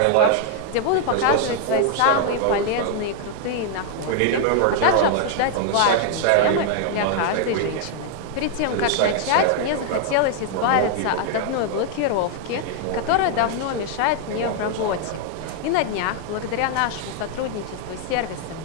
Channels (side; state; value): both; different; correlation 0.00